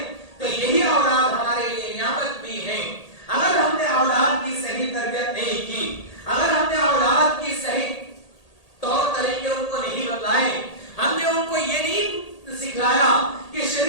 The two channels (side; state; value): right; late; 1.8 ms